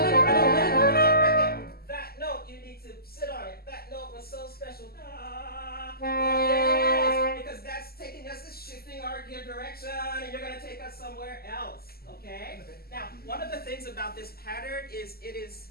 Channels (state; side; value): late; right; 0.45 ms